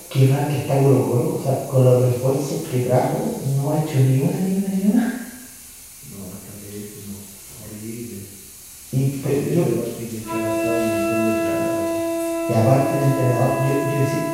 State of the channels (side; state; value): both; identical; correlation 1.00